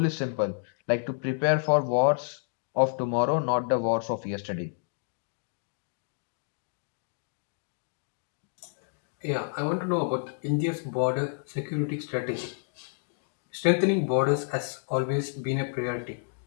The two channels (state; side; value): silent; right; digital silence